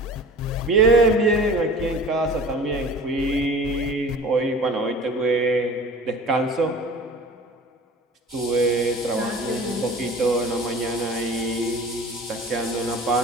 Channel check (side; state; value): both; normal; correlation 0.41